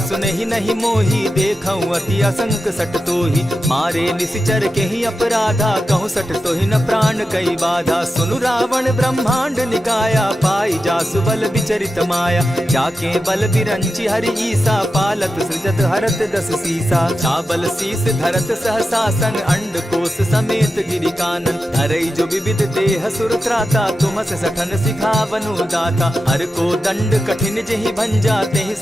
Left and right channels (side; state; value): both; normal; correlation 0.90